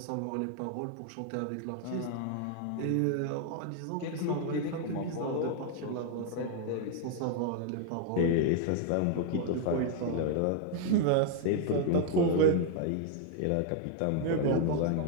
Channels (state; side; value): different; both; correlation 0.00